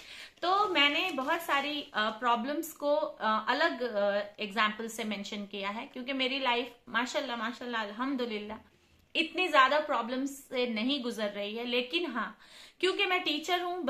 तो मैंने बहुत सारी प्रॉब्लम्स को अलग एग्जाम्पल से मेंशन किया है, क्योंकि मेरी लाइफ माशाल्लाह माशाल्लाह अल्हम्दुलिल्लाह इतनी ज्यादा प्रॉब्लम्स से नहीं गुजर रही है। लेकिन हाँ, क्योंकि मैं टीचर हूँ,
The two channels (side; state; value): both; identical; correlation 1.00